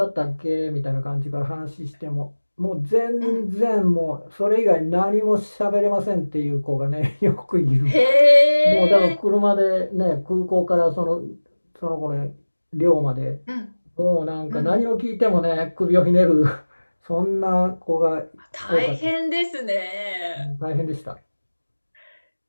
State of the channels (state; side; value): inverted; both; correlation -1.00